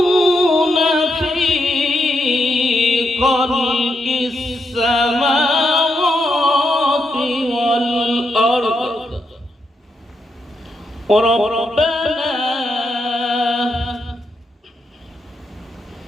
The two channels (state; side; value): normal; both; correlation 0.82